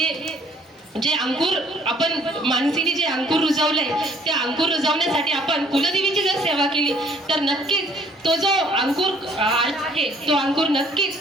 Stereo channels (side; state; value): both; normal; correlation 0.59